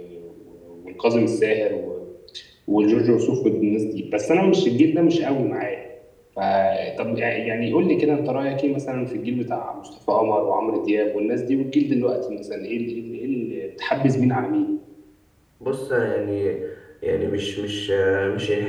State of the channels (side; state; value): both; identical; correlation 1.00